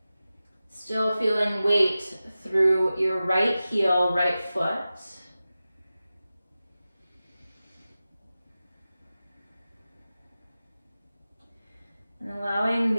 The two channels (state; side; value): inverted; both; correlation -0.95